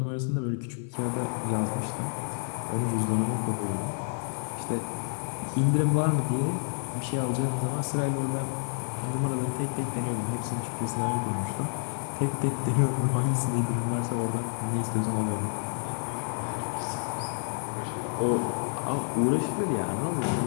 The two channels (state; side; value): silent; right; 59 dB below the other